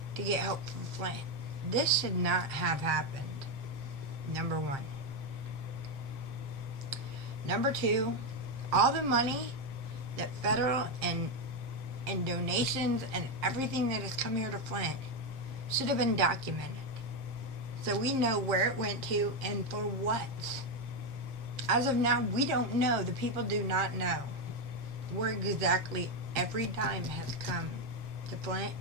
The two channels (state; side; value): late; left; 7.5 ms